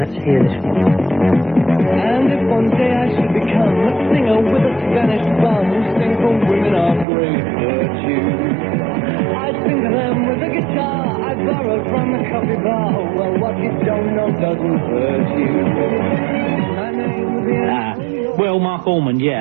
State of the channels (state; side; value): drops out; left; at 7.1 s